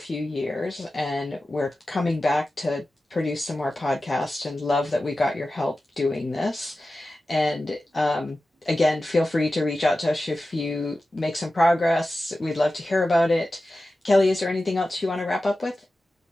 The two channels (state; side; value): normal; both; correlation 0.94